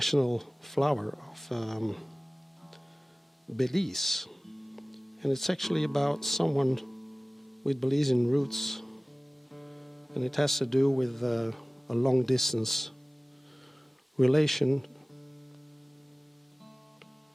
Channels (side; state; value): both; normal; correlation 0.98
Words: flower of Belize, and it's actually about someone with Belizean roots, and it has to do with a long distance relation,